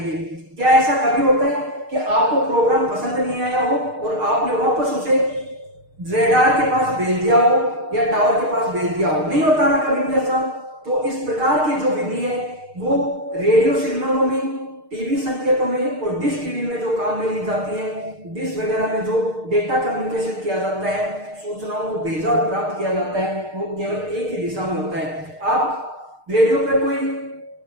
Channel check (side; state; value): left; late; 6.6 ms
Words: क्या ऐसा कभी होता है कि आपको प्रोग्राम पसंद नहीं आया हो और आपने वापस उसे रेडार के पास भेज दिया हो या टावर के पास भेज दिया हो? नहीं होता ना कभी भी ऐसा। तो इस प्रकार की जो विधि है वो रेडियो सिग्नलों में, टीवी संकेतों में और डिश टीवी में जो काम में ली जाती है, डिश वगैरह में जो डेटा कम्युनिकेशन किया जाता है, सूचनाओं को भेजा और प्राप्त किया जाता है, वो केवल एक ही दिशा में होता है। आप रेडियो पे कोई